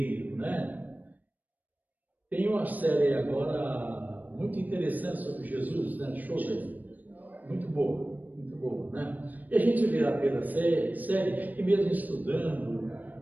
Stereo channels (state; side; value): late; left; 0.083 ms